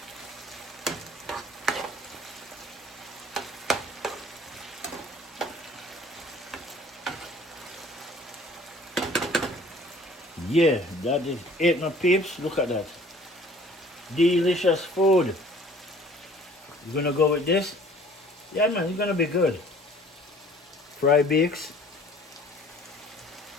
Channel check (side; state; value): both; normal; correlation 0.52